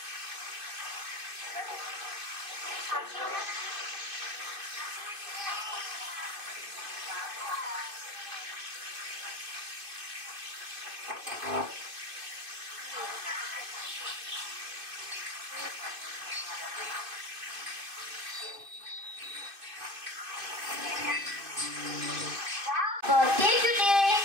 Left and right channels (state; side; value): late; left; 2.5 ms